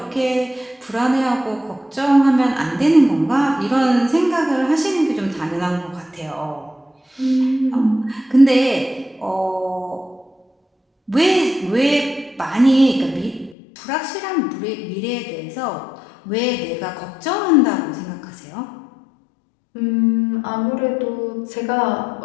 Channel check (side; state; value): right; drops out; at 13.6 s